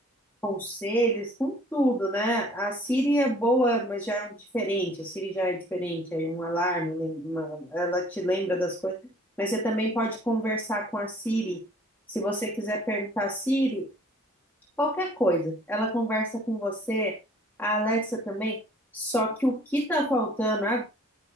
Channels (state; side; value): normal; both; correlation 0.54